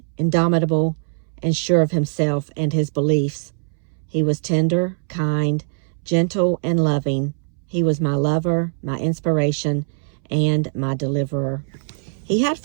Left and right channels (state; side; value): silent; left; 65 dB below the other